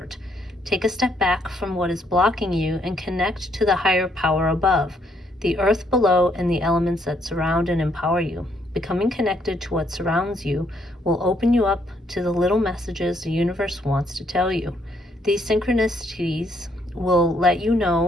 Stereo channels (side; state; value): both; normal; correlation 0.71